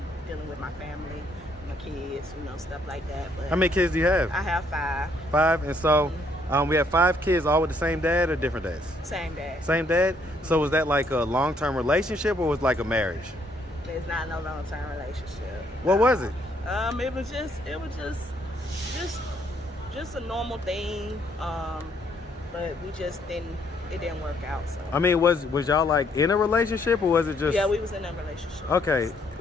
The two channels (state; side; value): normal; both; correlation 0.69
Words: dealing with my family, my kids, stuff like that. But how many kids do you have? I have 5. 5, and so we have 5 kids, all with the same dad or different dads? Same dad. Same dad? So was that like a long-term relationship, or was it like a marriage? It's not no long-term relationship. What was it? It was just a normal thing. But it didn't work out. So I mean, was y'all like in a relationship, or was it just? Yeah, we was in a relationship. Okay.